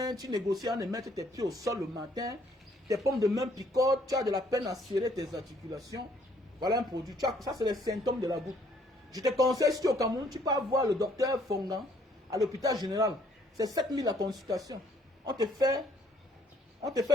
tu négocies à ne mettre tes pieds au sol le matin, tes paumes de main picotent, tu as de la peine à serrer tes articulations. Voilà un produit. Ça, c'est les symptômes de la goutte. Je te conseille, si tu es au Cameroun, tu peux voir le docteur Fongan à l'hôpital général. C'est 7 000 la consultation. On te fait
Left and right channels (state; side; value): normal; both; correlation 0.65